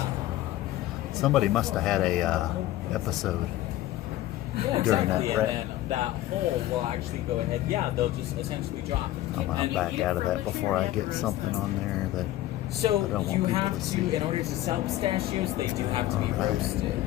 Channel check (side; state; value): right; quieter; 14.8 dB